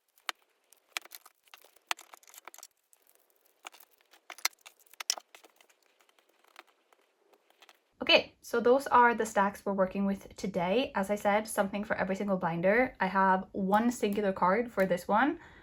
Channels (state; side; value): identical; both; correlation 1.00